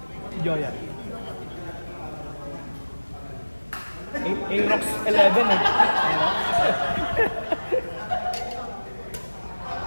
Si Joya. Aerox 11 eh.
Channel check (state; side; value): inverted; both; correlation -1.00